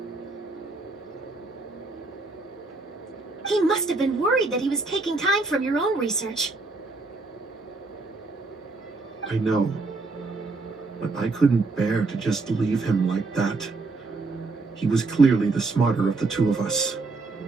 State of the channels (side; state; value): left; quieter; 3.6 dB